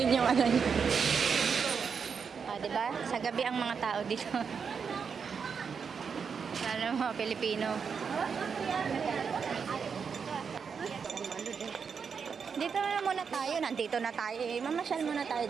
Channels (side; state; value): left; quieter; 6.2 dB